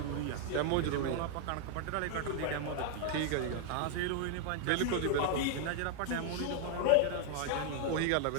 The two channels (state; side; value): different; both; correlation 0.00